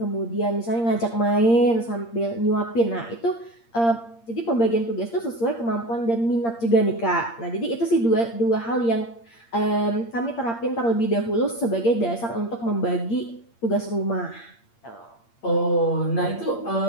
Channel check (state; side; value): late; right; 8.6 ms